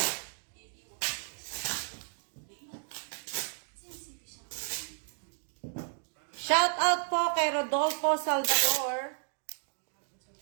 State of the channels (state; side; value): silent; left; digital silence